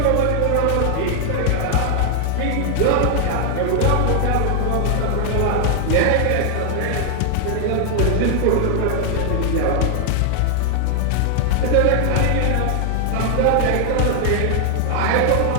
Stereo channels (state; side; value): different; both; correlation 0.00